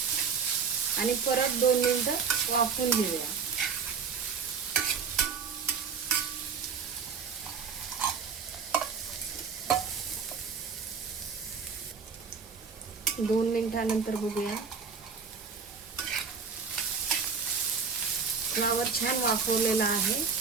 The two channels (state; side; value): quieter; left; 5.8 dB